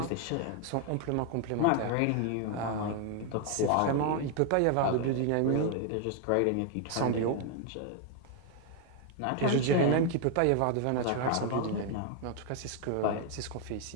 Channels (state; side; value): different; both; correlation 0.01